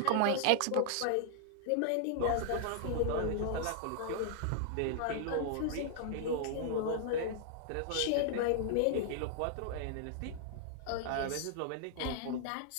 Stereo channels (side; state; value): both; different; correlation -0.01